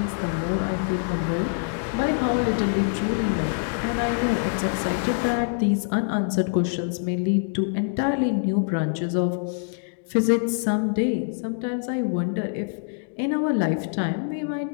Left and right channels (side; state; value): right; silent; digital silence